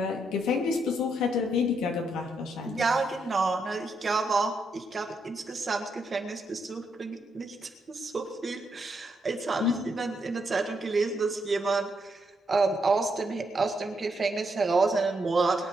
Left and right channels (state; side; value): normal; both; correlation 0.79